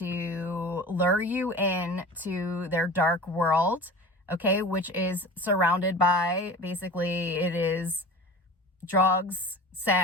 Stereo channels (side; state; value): both; normal; correlation 0.37